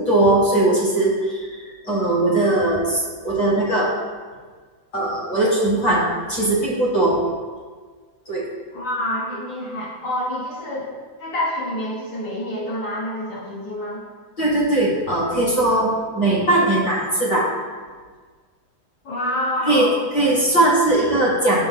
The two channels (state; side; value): late; right; 7.9 ms